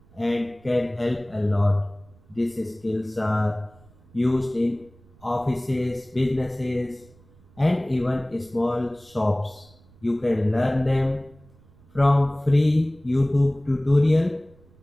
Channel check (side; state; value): right; noise; rumble, 28 dB below the sound